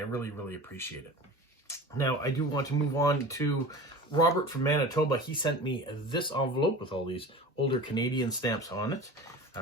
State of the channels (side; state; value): both; normal; correlation 0.35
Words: really appreciate it. Now, I do want to move on to Robert from Manitoba. He sent me this envelope with all these older Canadian stamps on it.